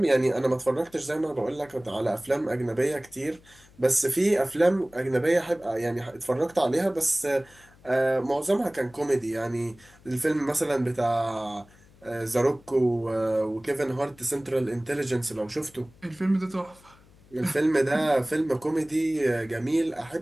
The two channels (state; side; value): noise; left; hum, 27 dB below the sound